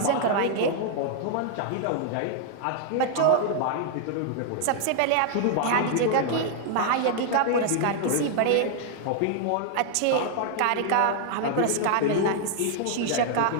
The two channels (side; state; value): both; different; correlation -0.01